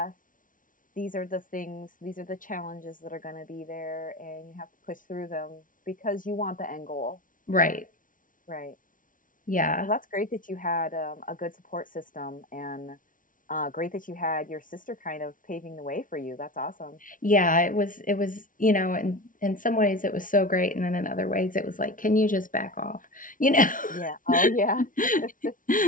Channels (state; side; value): late; right; 0.38 ms